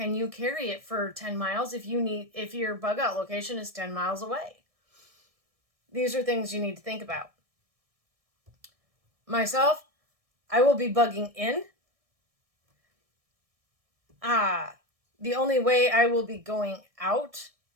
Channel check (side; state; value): left; late; 1.6 ms